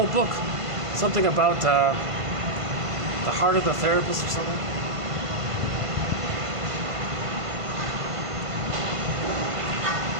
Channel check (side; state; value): left; late; 1.5 ms